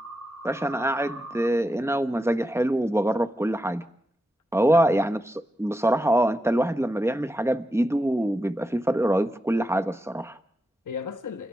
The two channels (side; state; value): both; normal; correlation 0.88